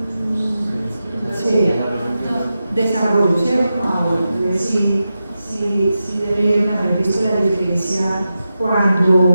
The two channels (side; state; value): both; inverted; correlation -0.91